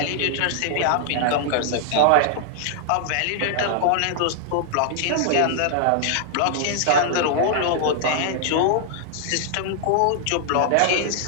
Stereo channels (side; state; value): both; different; correlation -0.01